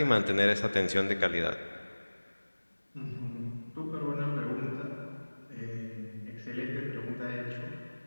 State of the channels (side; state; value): both; inverted; correlation -1.00